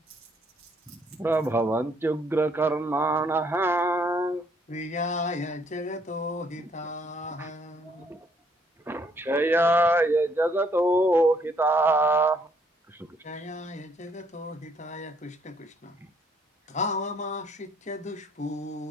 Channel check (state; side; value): normal; both; correlation 0.67